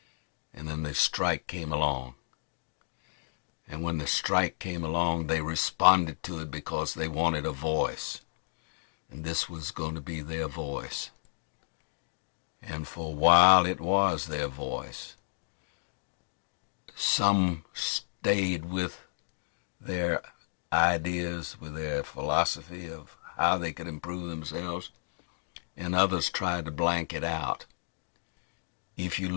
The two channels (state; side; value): silent; right; digital silence